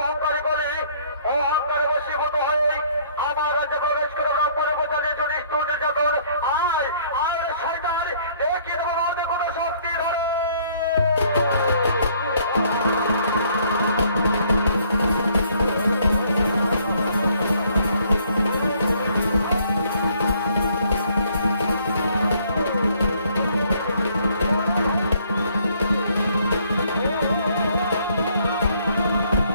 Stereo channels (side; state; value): both; inverted; correlation -0.63